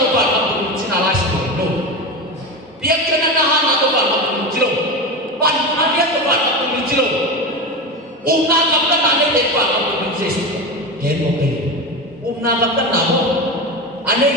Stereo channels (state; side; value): normal; both; correlation 0.22